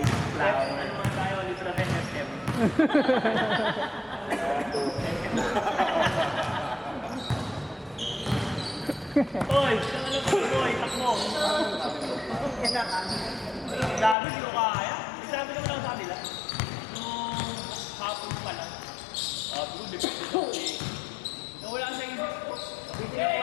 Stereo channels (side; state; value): right; drops out; at 14.2 s